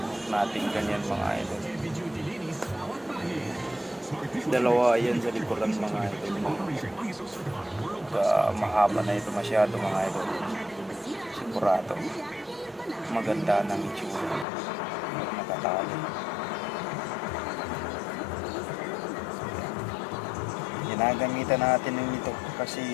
group natin ganyan mga idol. Dalawa yan sa likuran mga idol. Mahaba na ito masyado mga idol. Sigurado. Maganda ng itsura. Pag nakatali. Ginagamitan natin ng ito kasi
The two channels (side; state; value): right; drops out; at 14.5 s